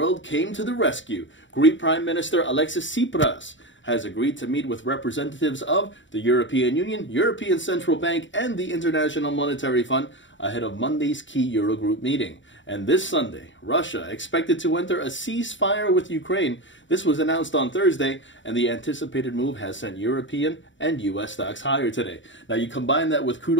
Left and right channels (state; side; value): late; right; 0.55 ms